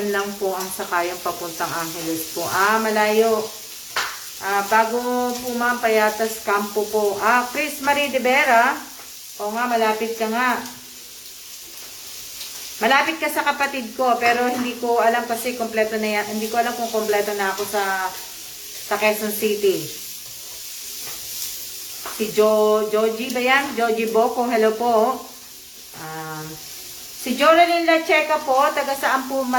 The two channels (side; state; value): both; identical; correlation 1.00